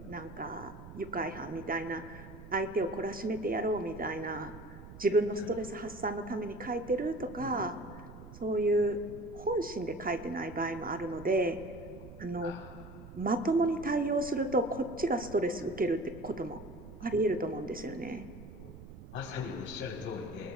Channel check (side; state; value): right; noise; rumble, 15 dB below the sound